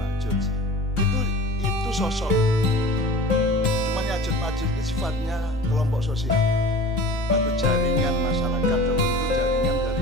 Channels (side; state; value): both; normal; correlation 0.39